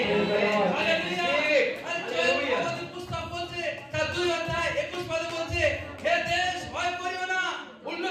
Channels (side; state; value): both; identical; correlation 1.00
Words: হালেলুয়া। আর হালেলুয়া। জয়ের পুস্তক বলছে, তার 2 অধ্যায় 21 পদে বলছে, হে দেশ ভয় করিও না,